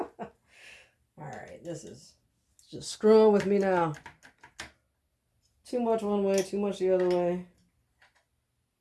Alright, this is just screwing with me now. Too much one way, too much the other way.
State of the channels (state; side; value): identical; both; correlation 1.00